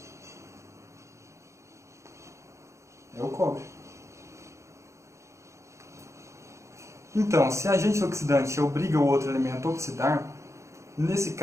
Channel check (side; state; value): left; late; 0.14 ms